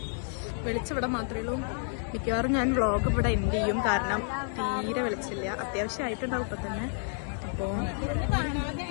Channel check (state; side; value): silent; right; 58 dB below the other